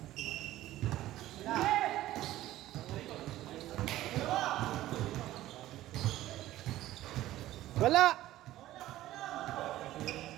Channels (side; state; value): left; quieter; 14.9 dB